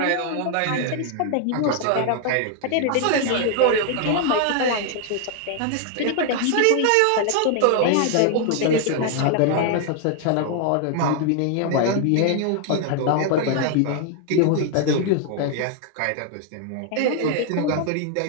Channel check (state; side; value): different; both; correlation 0.00